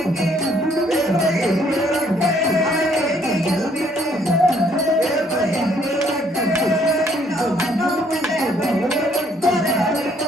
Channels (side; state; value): both; normal; correlation 0.66